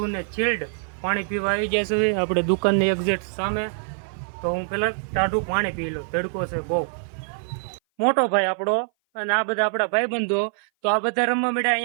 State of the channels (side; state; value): left; silent; 58 dB below the other